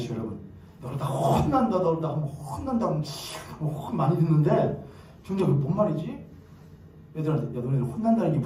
여러분. 너를 다 혼난다, 너를 다 혼난다, 많이 듣는데 중간 그게 뭔 말이지? 애들한테 야 너네들 혼난다는 게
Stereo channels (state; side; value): identical; both; correlation 1.00